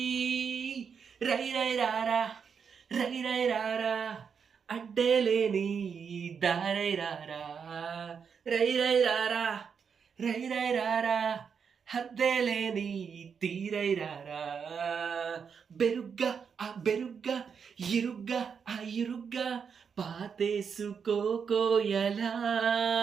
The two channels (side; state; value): left; quieter; 6.5 dB